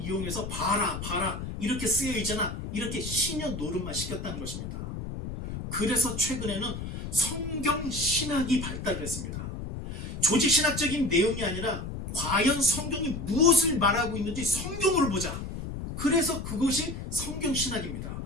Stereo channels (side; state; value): left; noise; rumble, 7 dB below the sound